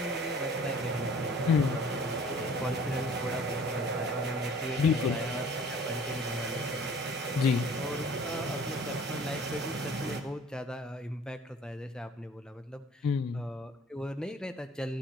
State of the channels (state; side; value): normal; both; correlation 0.50